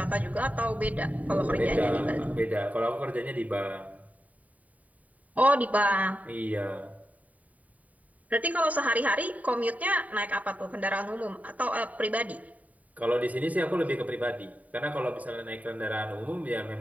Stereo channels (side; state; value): left; late; 0.071 ms